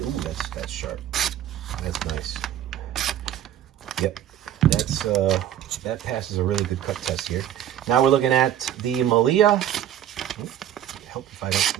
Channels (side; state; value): left; quieter; 11.0 dB